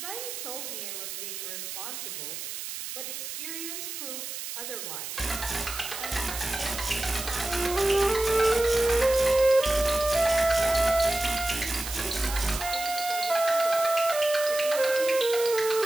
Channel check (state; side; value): noise; right; hiss, 7 dB below the sound